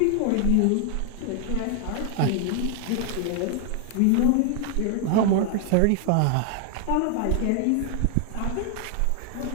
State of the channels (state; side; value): different; both; correlation 0.00